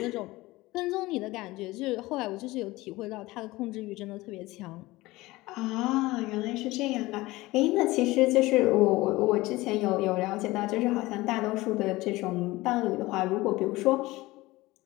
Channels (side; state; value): right; quieter; 19.7 dB